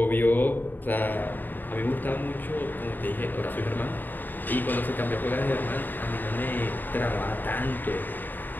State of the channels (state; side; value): late; right; 0.090 ms